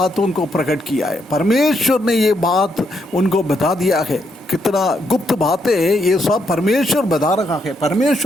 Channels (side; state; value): both; normal; correlation 0.77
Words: को प्रकट किया है। परमेश्वर ने ये बात उनको बता दिया है। कितना गुप्त बातें ये सब परमेश्वर बता रहा है।